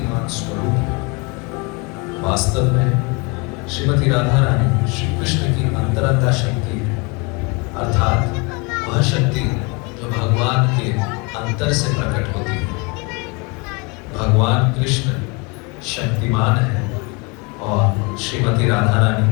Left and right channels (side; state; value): right; quieter; 29.7 dB